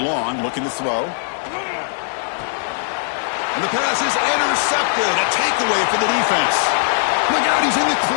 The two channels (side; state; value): right; silent; digital silence